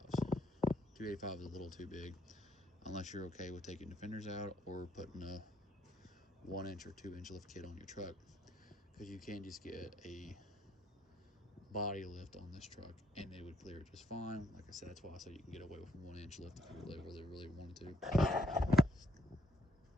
285 is a little too big, unless you're okay with taking the fenders out or putting a 1 inch or 2 inch lift kit on your truck, because you can just get a body lift on this truck and it would clear it just fine. Like I said, that's why I said you can get away with a 1 inch lift if you really wanted to,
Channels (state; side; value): normal; both; correlation 0.70